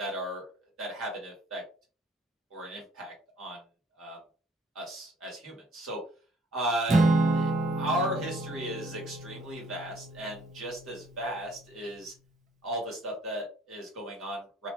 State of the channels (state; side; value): normal; both; correlation 0.61